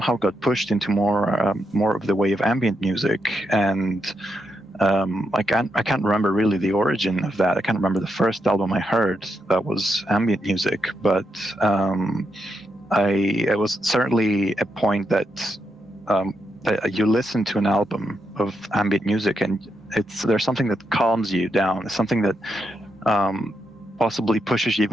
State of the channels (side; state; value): both; normal; correlation 0.82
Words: got pushed into more of the way of ambient music. And I can't remember really the origin of that. I can't remember the first album I heard that was ambient music, but it was certainly a point that you listen to an album of ambient music and there's something that calms you down. It's something that possibly pushes you